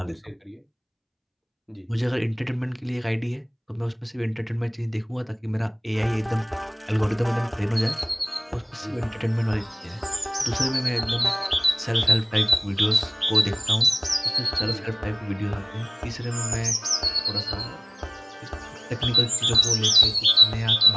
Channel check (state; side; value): identical; both; correlation 1.00